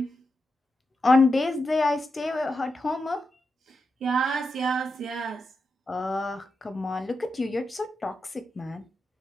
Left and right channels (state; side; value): normal; both; correlation 0.88